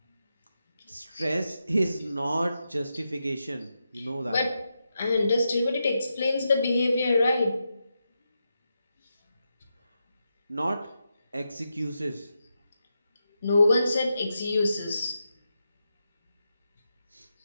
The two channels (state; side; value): inverted; both; correlation -0.87